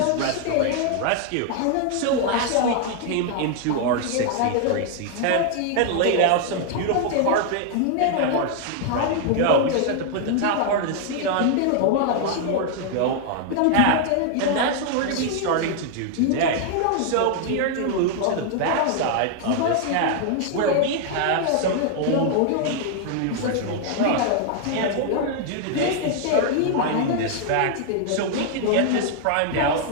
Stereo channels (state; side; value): different; both; correlation 0.00